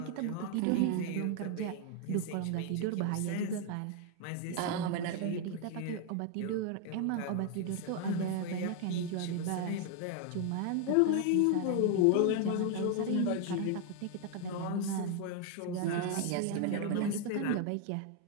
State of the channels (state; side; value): different; both; correlation 0.01